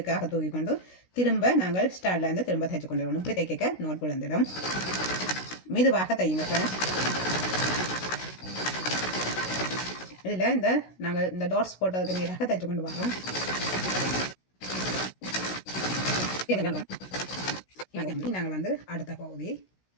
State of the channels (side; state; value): right; late; 16 ms